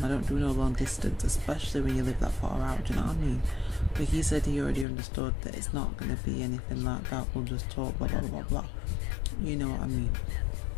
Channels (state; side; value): drops out; right; at 4.9 s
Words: I don't do no long distance, especially when you live that far out. Do you know what I mean? But he said he already understood that it's not going to be anything like that. We'll just talk, blah blah blah blah. You know what I mean?